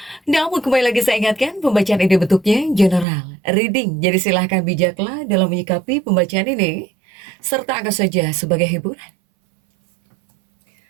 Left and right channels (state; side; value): drops out; left; at 3.1 s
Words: Namun kembali lagi saya ingatkan, pembacaan ini bentuknya general, reading. Jadi silahkan bijaklah dalam menyikapi pembacaan ini, serta anggap saja sebagai hiburan.